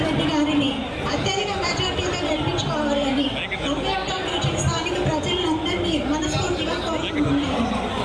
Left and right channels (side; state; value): both; identical; correlation 1.00